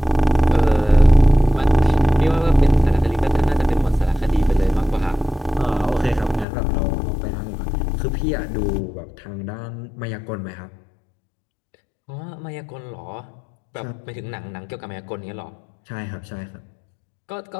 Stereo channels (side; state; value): right; drops out; at 6.5 s